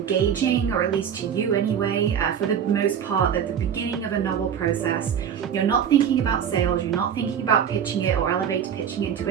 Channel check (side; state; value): left; quieter; 8.4 dB